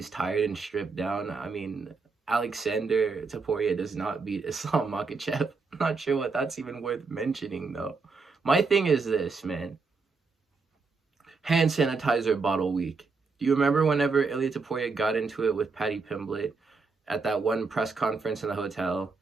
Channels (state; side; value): quieter; left; 4.4 dB